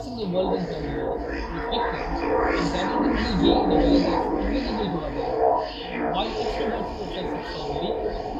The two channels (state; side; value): identical; both; correlation 1.00